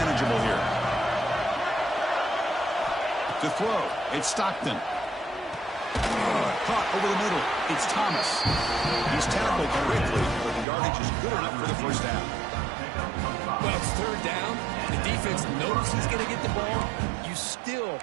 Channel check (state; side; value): drops out; left; at 10.7 s